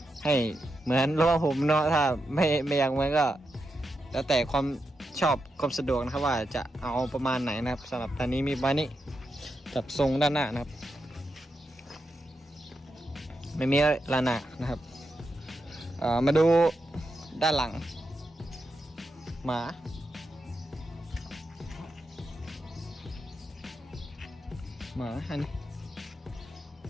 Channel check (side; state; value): both; normal; correlation 0.86